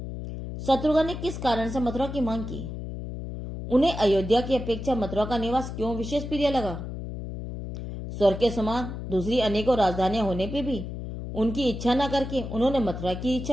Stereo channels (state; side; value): noise; left; hum, 7 dB below the sound